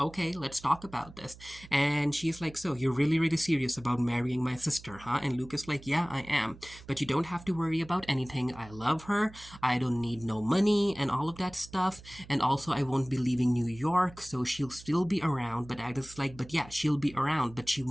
let's talk about this. And she's like, so you're really, really serious about marrying my sister, huh? And Luke is like, yeah, I am. But you don't have to worry about anything. I love her. I don't need no money and all of that stuff. And also, I won't be leaving New York, so she'll still be around. But Agnes is like, but yeah, she'll be around, but she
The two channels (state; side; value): noise; right; hum, 19 dB below the sound